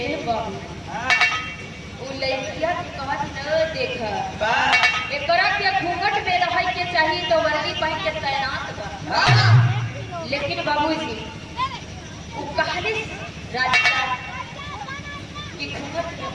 बाबू, वो लड़किया की कहत न देखा, एकरा के घूंघट में रह के चाहिए तो वर्दी पहन के तैनात बा। लेकिन बाबूजी वो कहले राधिका कि घूंघट में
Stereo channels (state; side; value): identical; both; correlation 1.00